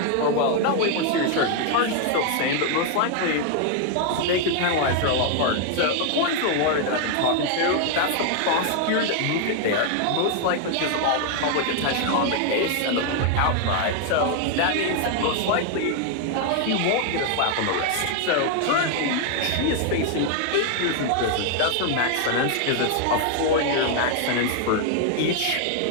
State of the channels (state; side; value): different; both; correlation 0.00